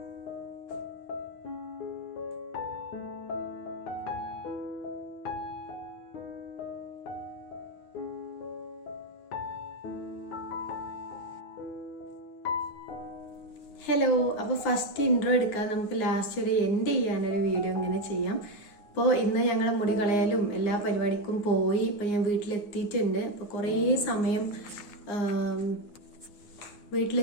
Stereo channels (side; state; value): right; late; 9.7 ms